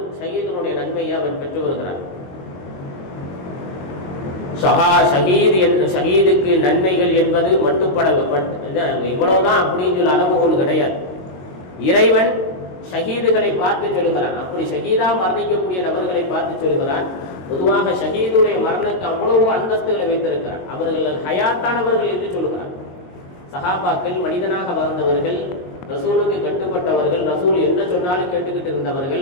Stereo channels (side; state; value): right; late; 22 ms